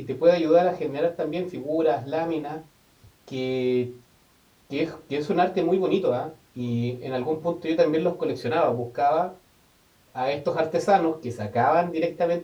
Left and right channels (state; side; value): identical; both; correlation 1.00